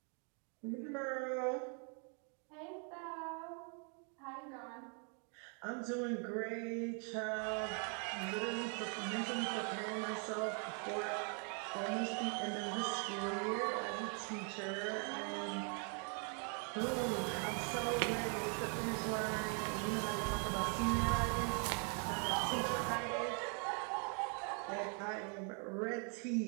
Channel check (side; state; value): left; quieter; 39.8 dB